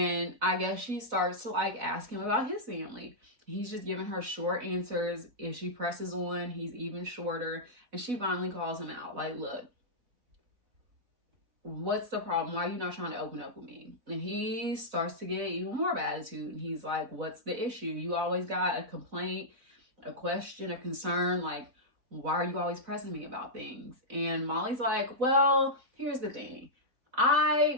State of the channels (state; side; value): late; left; 4.0 ms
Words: I guess she starts to like ask him about his family. He's just giving her short answers. If she presses on, he's even shorter. And she finally calls him out. Like, look, what's the problem? Why are you not trying to open up with me? And he starts to get even more of an attitude. And he's like, what's the issue? You always got a complaint, a question, a concern. Like, why are you always pressing me about things? And Molly's like, well, here's the thing.